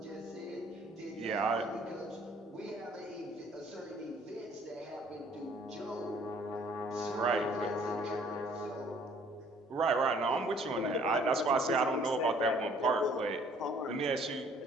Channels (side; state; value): both; normal; correlation 0.58